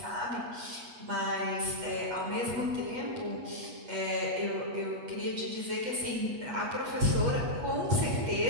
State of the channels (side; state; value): left; late; 8.3 ms